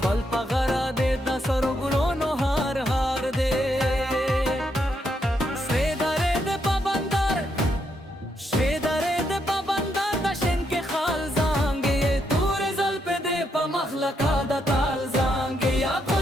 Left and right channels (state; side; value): normal; both; correlation 0.78